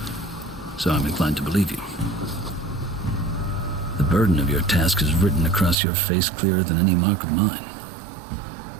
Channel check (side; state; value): left; drops out; at 5.8 s